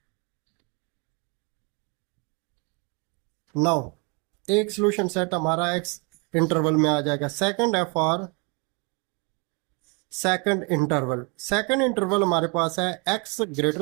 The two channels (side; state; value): left; quieter; 33.0 dB